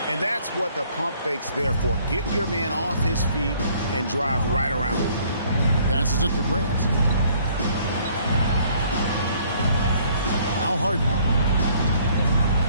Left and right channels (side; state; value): both; inverted; correlation -0.60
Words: And that's what the pump fake's there for. Get your man off his feet and drive right around him. Passes it to Grant. Now Harden.